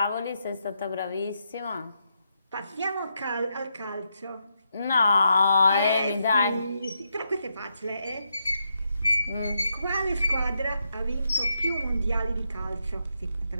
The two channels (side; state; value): both; inverted; correlation -0.81